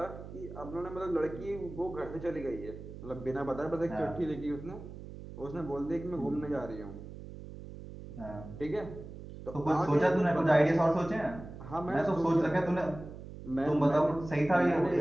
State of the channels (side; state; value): right; noise; hum, 13 dB below the sound